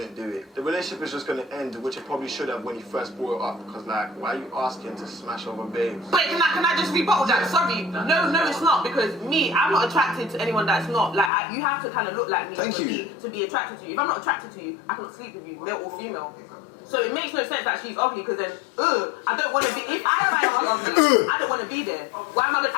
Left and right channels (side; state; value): right; drops out; at 11.3 s